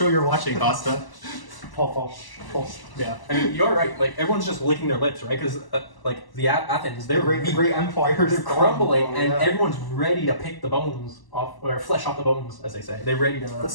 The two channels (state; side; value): late; right; 1.0 ms